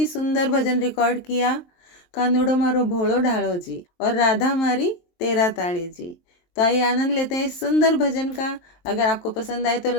सुंदर भजन रिकॉर्ड किया। कानूड़ो मारो भोलो ढालो जी और राधा मारी तेरा ताड़ी जी। तो आइए आनंद लेते हैं इस सुंदर भजन का। अगर आपको पसंद आए तो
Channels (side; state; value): right; late; 23 ms